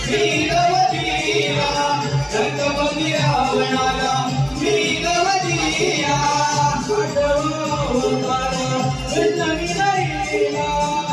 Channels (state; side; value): identical; both; correlation 1.00